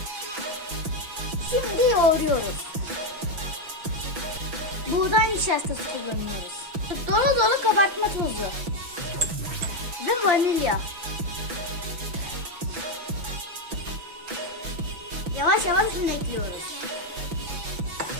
Şimdi yoğuruyoruz. Buğday nişastası kullanıyoruz. Dolu dolu kabartma tozu ve vanilya. Yavaş yavaş un ekliyoruz.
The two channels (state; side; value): late; left; 6.0 ms